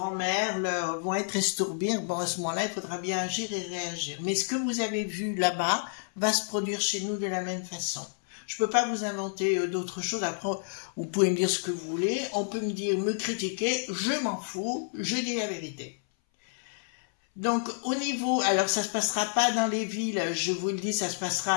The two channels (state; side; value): silent; right; 58 dB below the other